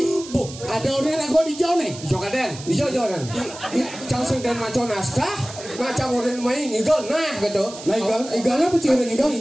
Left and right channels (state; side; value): noise; right; hiss, 14 dB below the sound